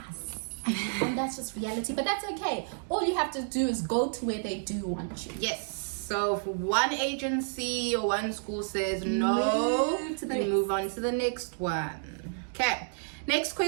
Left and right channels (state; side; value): silent; left; digital silence